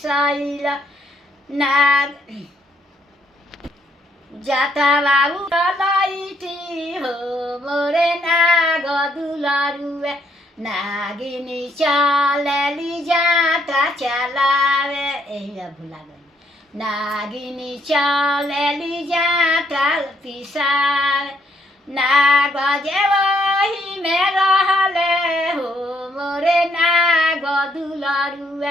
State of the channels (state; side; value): normal; both; correlation 0.71